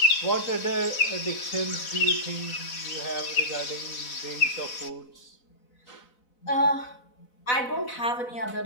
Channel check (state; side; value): late; right; 4.2 ms